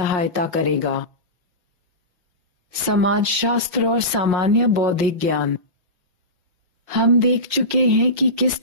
करेगा। समाजशास्त्र और सामान्य बौद्धिक ज्ञान। हम देख चुके हैं कि किस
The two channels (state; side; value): late; left; 5.5 ms